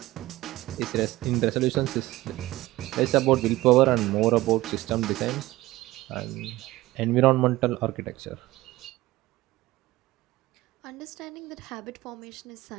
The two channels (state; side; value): quieter; left; 17.9 dB